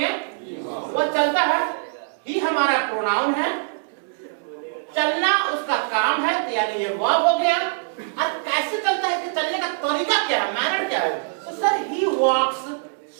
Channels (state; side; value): silent; left; digital silence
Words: वो चलता है। ही हमारा प्रोनाउन है, चलना उसका काम है, तो यानी ये वर्ब हो गया। और कैसे चलता है कि चलने का तरीका क्या है? मैनर क्या है? तो सर ही वॉक्स